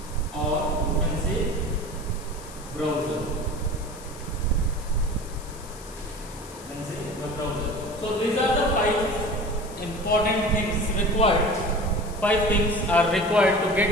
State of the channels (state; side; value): noise; left; hiss, 18 dB below the sound